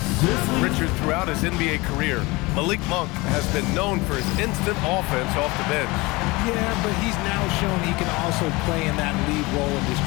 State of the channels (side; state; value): right; quieter; 23.4 dB